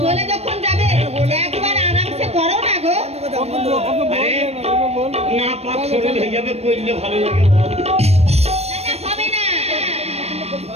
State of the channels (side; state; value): left; late; 0.31 ms